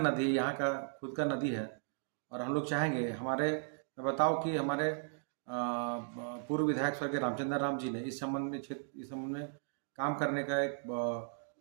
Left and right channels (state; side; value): silent; left; digital silence